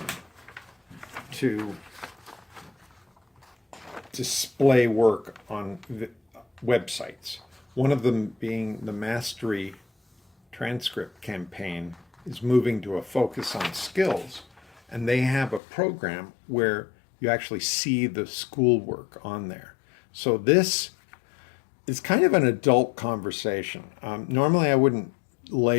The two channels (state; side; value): drops out; right; at 15.6 s